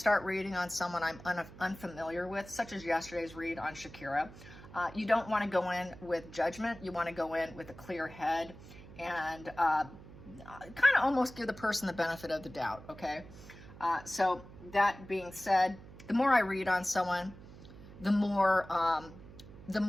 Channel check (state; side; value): noise; right; hum, 17 dB below the sound